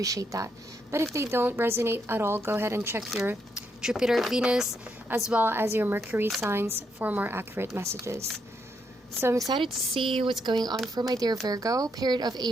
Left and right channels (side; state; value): both; normal; correlation 0.78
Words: that. But if they don't resonate at all, go ahead and check your Jupiter, Venus, as well as your Mercury signs for more accurate messages. So I'm excited to see what's going on for my dear Virgo. Period of